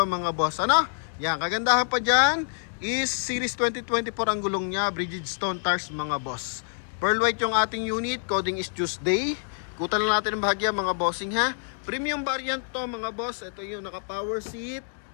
mga boss. Ano? Yan, kagandahan pa dyan is Series 2024 ang gulong nya, Bridgestone tires mga boss. Pearl white yung ating unit, coding is Tuesday. Kutan lang natin ang bahagya mga bossing ha. Premium variant to mga boss, ito yung naka power seat.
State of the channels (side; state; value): right; silent; digital silence